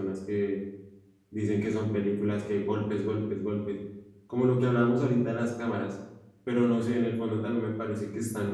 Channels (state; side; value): identical; both; correlation 1.00